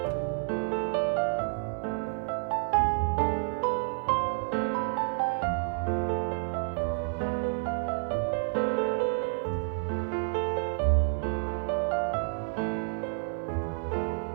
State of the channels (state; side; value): silent; left; digital silence